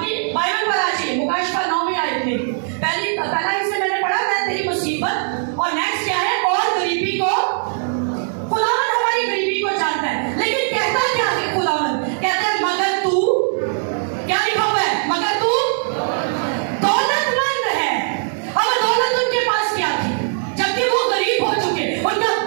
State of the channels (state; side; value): silent; left; digital silence